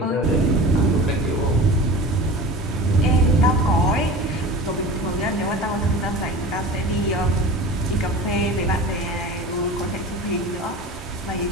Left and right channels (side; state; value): both; normal; correlation 0.34